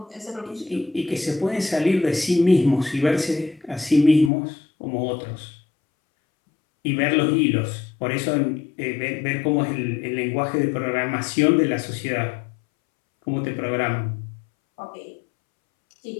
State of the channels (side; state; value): right; drops out; at 4.3 s